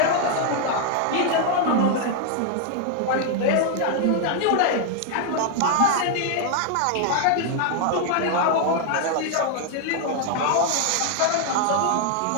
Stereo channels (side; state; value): both; different; correlation 0.00